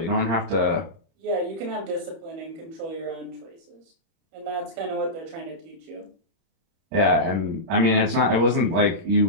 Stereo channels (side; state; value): left; late; 31 ms